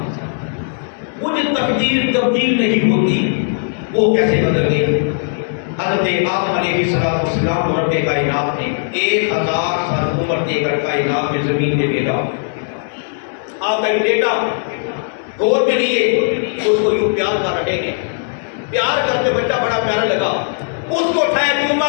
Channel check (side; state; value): right; silent; digital silence